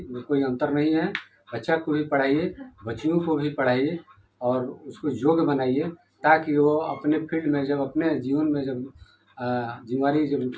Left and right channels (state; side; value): identical; both; correlation 1.00